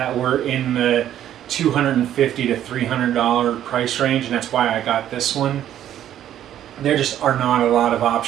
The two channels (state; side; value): quieter; left; 11.3 dB